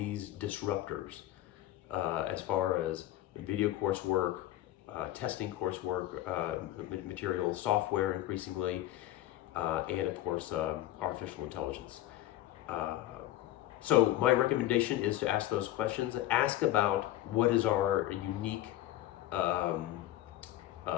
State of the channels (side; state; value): right; quieter; 14.4 dB